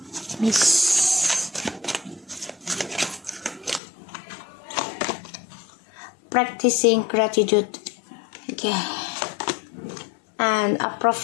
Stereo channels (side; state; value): right; drops out; at 3.8 s